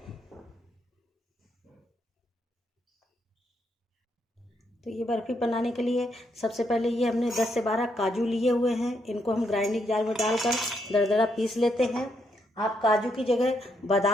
तो ये बर्फ़ी बनाने के लिए सबसे पहले ये हमने 10 से 12 काजू लिए हुए हैं। इनको हम ग्राइंडिंग जार में डालकर दरदरा पीस लेते हैं। आप काजू की जगह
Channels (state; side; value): normal; both; correlation 0.77